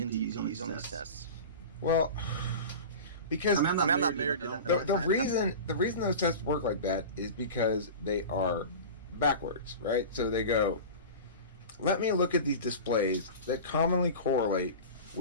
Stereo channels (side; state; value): both; inverted; correlation -0.32